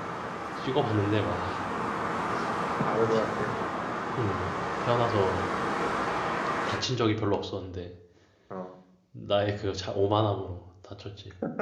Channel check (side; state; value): both; identical; correlation 1.00